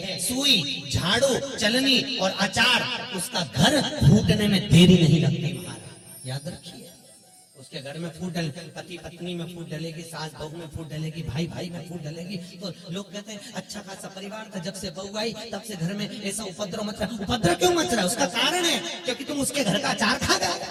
सुई, झाड़ू, चलनी और अचार, उसका घर फूटने में देरी नहीं लगती महाराज, याद रखिए। उसके घर में फूट डले, पति पत्नी में फूट डलेगी, सास बहू में फूट डलेगी, भाई भाई में फूट डलेगी, तो लोग कहते हैं अच्छा खासा परिवार था, जब से बहू आई तब से घर में ऐसा उपद्रव मच रहा। उपद्रव क्यों मच रहा है? उसका कारण है क्योंकि तुम उसके घर का अचार खा गए।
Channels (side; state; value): both; identical; correlation 1.00